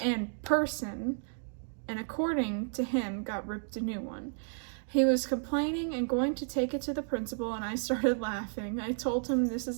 and according to him, got ripped a new one. He was complaining and going to take it to the principal, and I started laughing. I told him this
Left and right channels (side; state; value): left; silent; digital silence